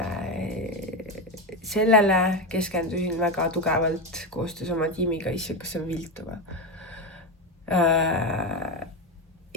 sellele keskendusin väga tugevalt koostöös oma tiimiga, kas on viltuva.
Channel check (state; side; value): normal; both; correlation 0.13